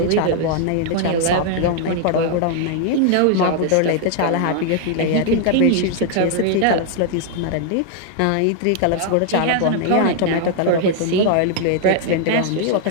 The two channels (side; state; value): both; different; correlation 0.00